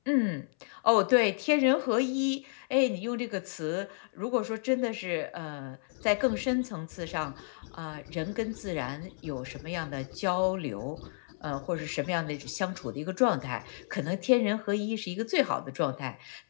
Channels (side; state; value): right; silent; 57 dB below the other